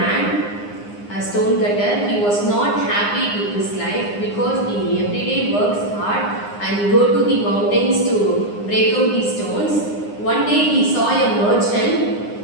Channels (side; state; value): right; late; 9.8 ms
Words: a stone cutter. He was not happy with his life because he every day works hard and go to the mountains to break out the stones. One day he saw a